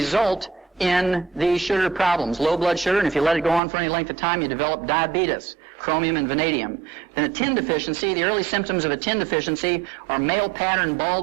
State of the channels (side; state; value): left; drops out; at 3.6 s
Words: in these sugar problems. Low blood sugar, and if you let it go on for any length of time, you develop diabetes, chromium and vanadium. Then a tin deficiency, the early symptoms of a tin deficiency are male pattern